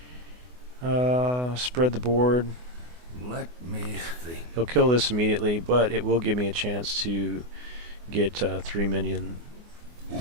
Spread the board. Let me think. He'll kill this immediately, but it will give me a chance to get 3 minion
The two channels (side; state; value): left; late; 24 ms